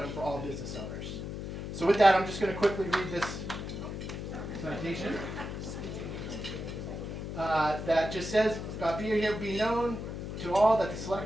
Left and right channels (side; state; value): left; noise; hum, 6 dB below the sound